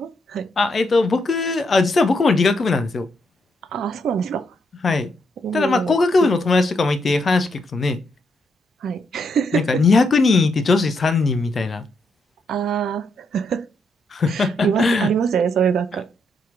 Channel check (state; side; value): normal; both; correlation 0.78